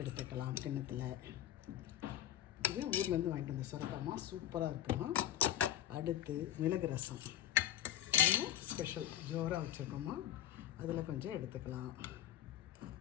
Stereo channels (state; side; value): quieter; right; 11.8 dB